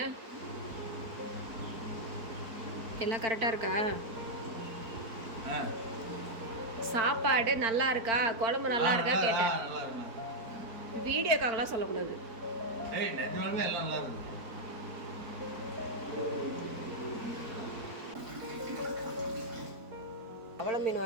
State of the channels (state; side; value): late; left; 4.4 ms